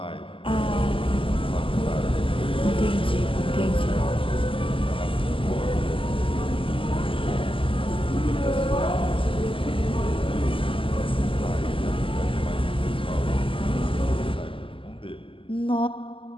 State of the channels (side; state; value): right; late; 0.25 ms